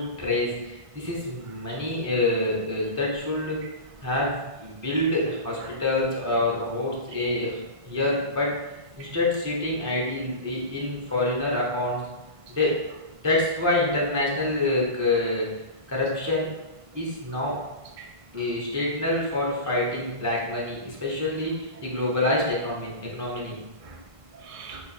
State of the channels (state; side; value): late; left; 1.5 ms